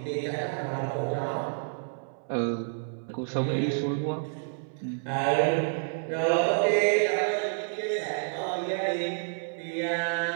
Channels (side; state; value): left; silent; 59 dB below the other